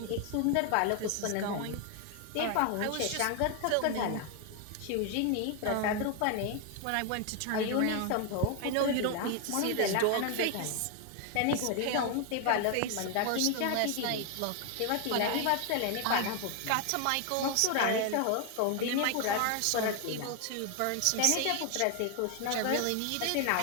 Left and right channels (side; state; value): both; different; correlation 0.01